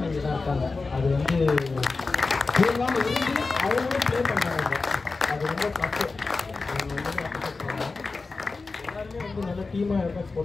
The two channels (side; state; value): right; quieter; 4.0 dB